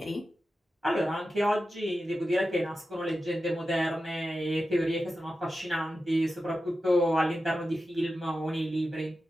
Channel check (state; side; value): normal; both; correlation 0.91